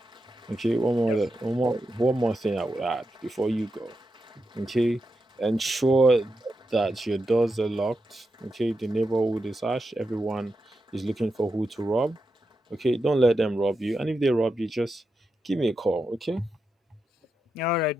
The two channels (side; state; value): both; normal; correlation 0.87